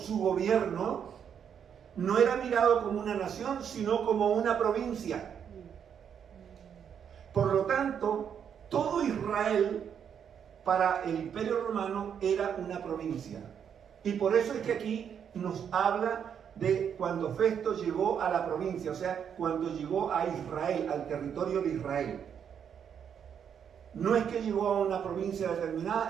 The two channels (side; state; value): left; quieter; 8.0 dB